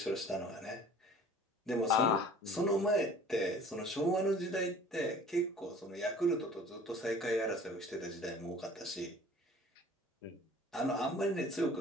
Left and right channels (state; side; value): normal; both; correlation 0.48